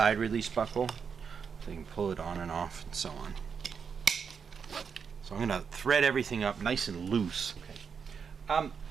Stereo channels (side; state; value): left; quieter; 6.4 dB